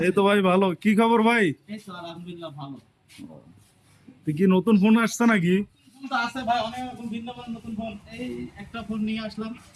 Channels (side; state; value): both; identical; correlation 1.00